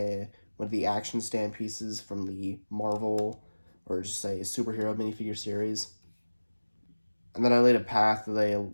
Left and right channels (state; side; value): inverted; both; correlation -1.00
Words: of the action stand pieces from the Marvel, or just say superhero minifigure series. And then I laid a path that they